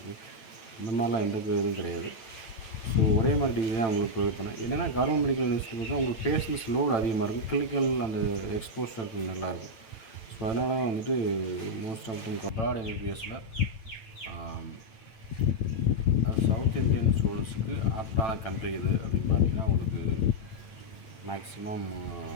இந்த மாதிரிலாம் எந்த இதுவும் கிடையாது. ஸோ ஒரே மாதிரி டிகிரி தான் உங்களுக்கு ப்ரொவைட் பண்ணேன். என்னென்னா கவர்மெண்ட் மெடிக்கல் யூனிவர்சிட்டி பார்த்தா உங்களுக்கு பேஷன்ஸ் லோடு அதிகமாக இருக்கும், கிளினிக்கல் அந்த எக்ஸ்போஷர் நல்லாயிருக்கும். ஸோ அதனால தான் வந்துட்டு மோஸ்ட் ஆஃப் தம் அப்ராட் எம்பிபிஎஸ்சில் சவுத் இந்தியன் ஸ்டூடெண்ட்ஸுக்கு ஆப்டான கண்ட்ரி எது அப்படின்னு பார்த்தீங்கன்னா உங்களுக்கு மேக்ஸிமம்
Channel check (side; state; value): right; late; 9.0 ms